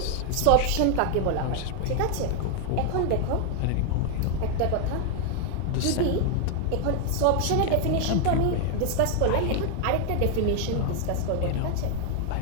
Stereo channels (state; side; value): different; both; correlation 0.01